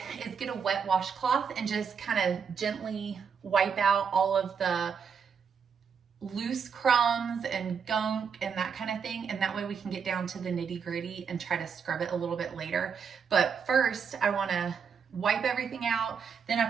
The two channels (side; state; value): left; quieter; 6.5 dB